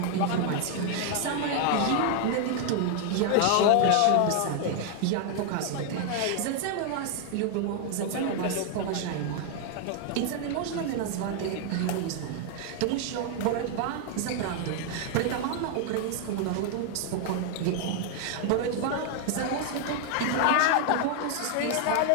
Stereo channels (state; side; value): different; both; correlation 0.00